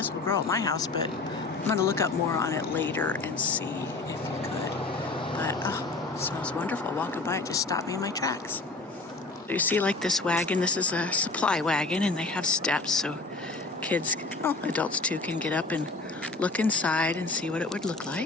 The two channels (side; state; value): right; quieter; 3.5 dB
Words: will grow at my house, but I'm going to look up more on it later and see if it could. But, oh, it smells wonderful. Walking by, it just stopped me in my tracks. You see, like this wagon, this is a supply wagon, and they have steps, so kids, well, adults too, can get up and look inside and see what it would look